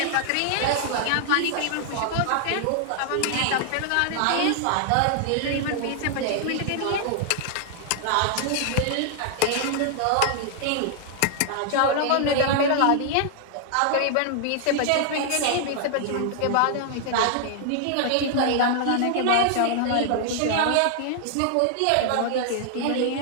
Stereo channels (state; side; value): different; both; correlation 0.00